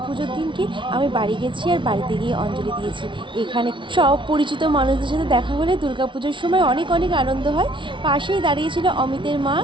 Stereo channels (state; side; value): late; left; 0.24 ms